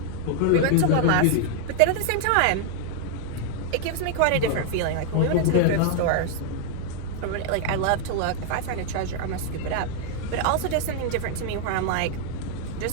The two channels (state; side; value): different; both; correlation 0.00